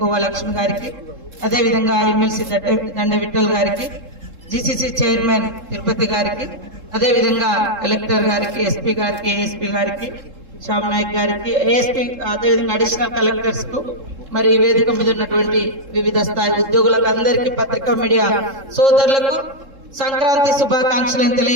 లక్ష్మి గారికి, అదేవిధంగా ఎమ్మెల్సీ దండ విఠల్ గారికి, జీసీసీ చైర్మన్ తిరుపతి గారికి, అదేవిధంగా కలెక్టర్ గారికి, ఎస్పీ గారికి, ఏఎస్పీ గారికి, శ్యామ్ నాయక్ గారికి, ఏఎస్పీ, అదేవిధంగా అడిషనల్ కలెక్టర్స్ కు, మరి వేదిక మీద ఉన్నటువంటి వివిధ స్థాయి ఉద్యోగులకు అందరికీ, పత్రికా మీడియా సోదరులకు సంక్రాంతి శుభాకాంక్షలను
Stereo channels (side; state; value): left; late; 3.7 ms